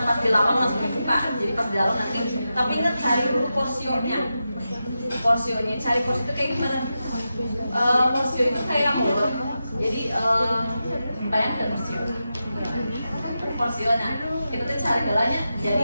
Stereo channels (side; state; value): both; inverted; correlation -0.90